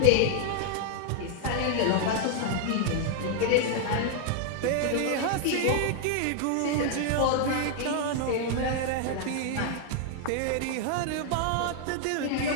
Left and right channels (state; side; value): different; both; correlation 0.00